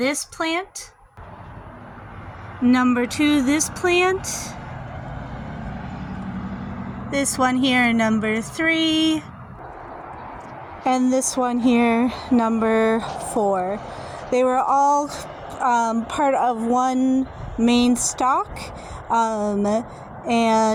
plant. Number 2, this plant. This one here, number 3. And this one here, number 4. They were all part of one main stalk,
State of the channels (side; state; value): both; identical; correlation 1.00